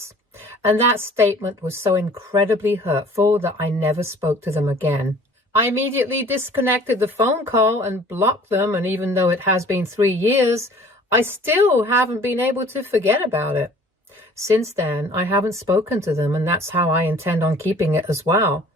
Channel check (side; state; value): both; normal; correlation 0.50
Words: And that statement was so incredibly hurtful that I never spoke to them again. I immediately disconnected the phone call and blocked them, and even though it has been 3 years, I still haven't been able to forget about it. Since then, I haven't spoken to them, and that's how I intend on keeping it as well.